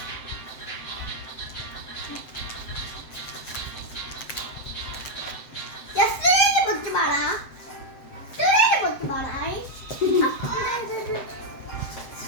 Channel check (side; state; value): right; late; 7.6 ms